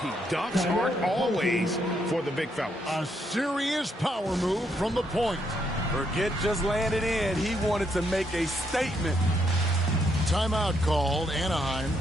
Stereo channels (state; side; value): normal; both; correlation 0.75